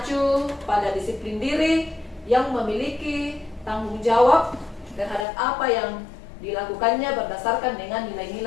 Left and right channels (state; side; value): drops out; right; at 5.2 s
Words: pada disiplin diri yang memiliki tanggung jawab terhadap apa yang dilakukannya berdasarkan dengan